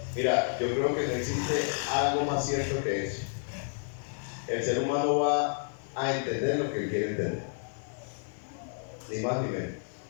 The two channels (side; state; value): right; silent; digital silence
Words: Mira, yo creo que no existe algo más cierto que eso. El ser humano va a entender lo que él quiere entender. Ni más ni menos.